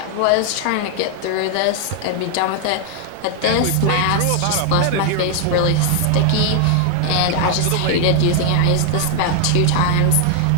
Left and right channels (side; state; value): both; different; correlation 0.00